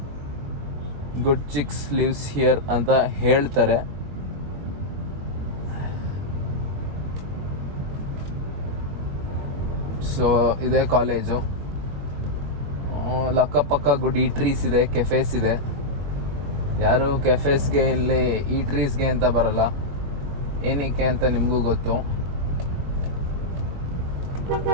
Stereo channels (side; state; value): left; late; 21 ms